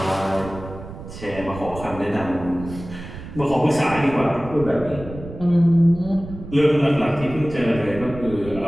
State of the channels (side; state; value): right; noise; rumble, 13 dB below the sound